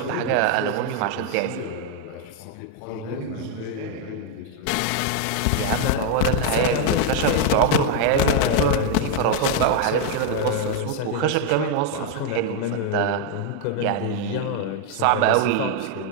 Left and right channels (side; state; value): both; different; correlation 0.01